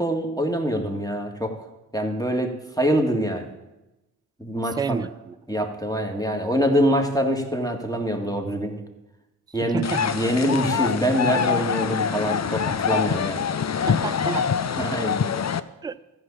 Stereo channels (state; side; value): normal; both; correlation 0.40